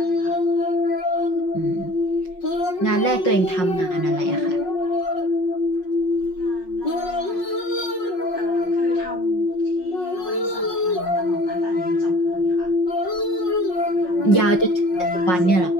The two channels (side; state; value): right; late; 5.5 ms